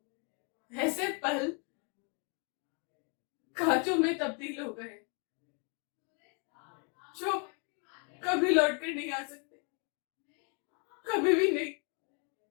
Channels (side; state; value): right; quieter; 36.7 dB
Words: ऐसे पल कांचों में तब्दील हो गए जो कभी लौट कर नहीं आ सकते, कभी भी नहीं।